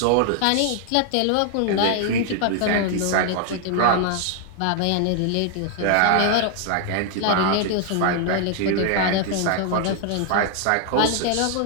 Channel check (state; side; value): different; both; correlation 0.00